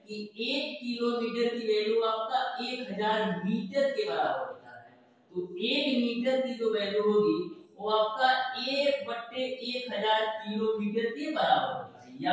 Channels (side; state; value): both; identical; correlation 1.00